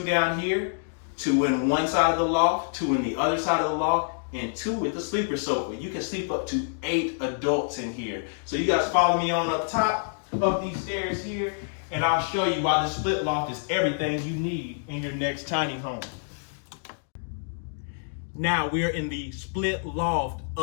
down here, 2 in one side of the loft, 2 in the other side of the loft, and 2 with the sleeper sofa. You can sleep up to 8 adults in here. So you guys follow me on up top of these stairs here, and I'll show you why the split loft is everything you need in your next tiny home. Now we are in the split loft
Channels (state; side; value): silent; right; digital silence